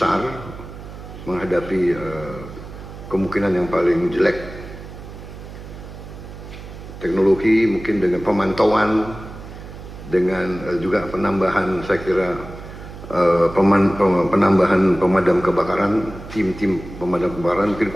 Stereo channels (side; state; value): right; noise; hum, 13 dB below the sound